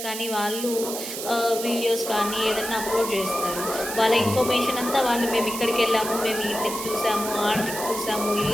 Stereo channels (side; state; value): right; noise; hiss, 7 dB below the sound